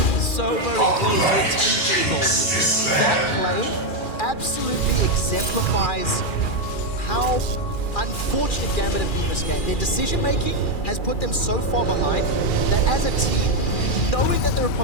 So very close to a 10k goal lead. That play absolutely exemplifies how unfortunate Gambit have been this game. Their decision making has put them so far behind that as a team, knowing that their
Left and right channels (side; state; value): right; late; 2.4 ms